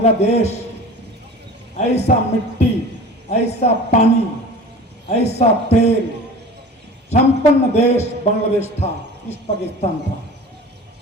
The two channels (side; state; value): both; normal; correlation 0.38